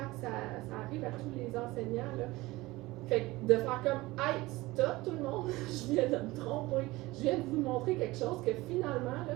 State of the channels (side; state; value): left; quieter; 20.1 dB